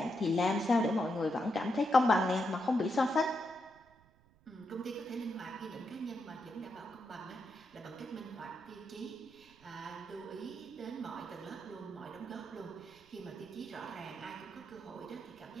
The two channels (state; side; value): noise; right; rumble, 28 dB below the sound